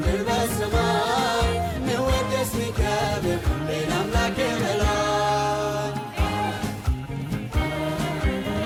በሰማይ ሚወደስ ሚከብር ሌላ አምላክ በላይ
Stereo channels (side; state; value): both; identical; correlation 1.00